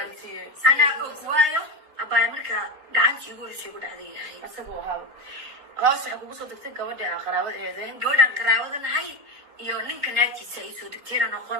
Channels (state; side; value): late; left; 3.9 ms